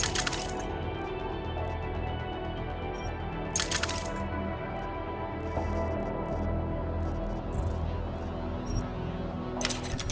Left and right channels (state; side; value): identical; both; correlation 1.00